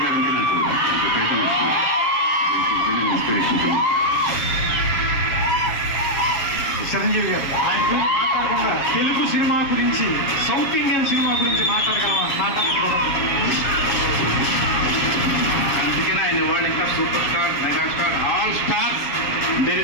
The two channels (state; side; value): late; right; 7.2 ms